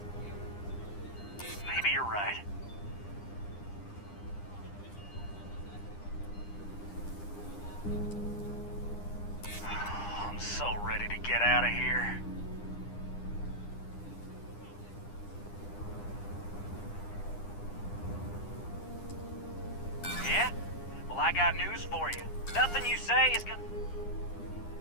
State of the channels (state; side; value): late; right; 9.9 ms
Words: Maybe you're right. I'm so ready to get out of here. Yeah? Well, I got news for you. Nothing you say is gonna...